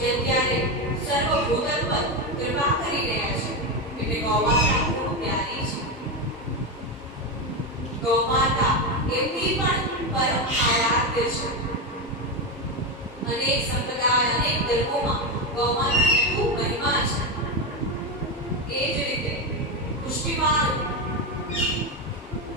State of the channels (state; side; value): normal; both; correlation 0.12